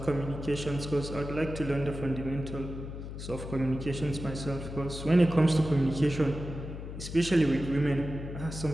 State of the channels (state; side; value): noise; left; hum, 9 dB below the sound